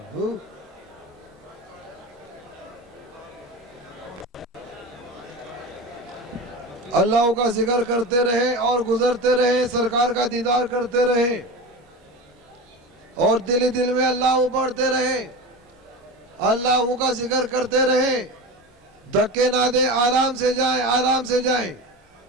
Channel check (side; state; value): both; normal; correlation 0.27